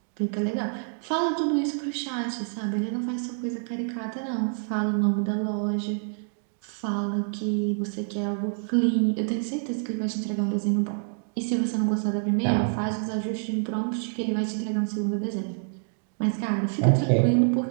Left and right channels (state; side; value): silent; left; digital silence